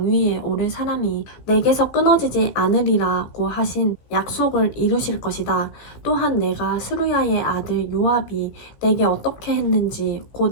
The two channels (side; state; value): right; late; 16 ms